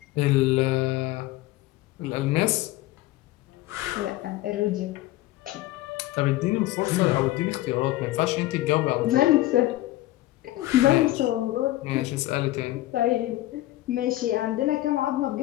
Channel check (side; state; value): right; quieter; 16.6 dB